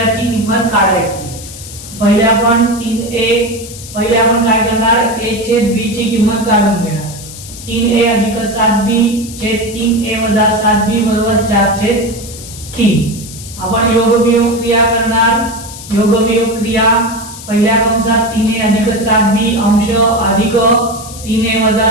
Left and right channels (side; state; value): left; noise; hiss, 14 dB below the sound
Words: किंमत काढायची। पहिले आपण काय करणार a छेद b ची किंमत काढून घेणार। 3a अधिक 7b छेद 3a वजा 7b बरोबर 4/3। आपण योगवियोग क्रिया करणार। योगवियोग क्रिया पहिल्या कंसात 3a अधिक 7b अंश अधिक 3a वजा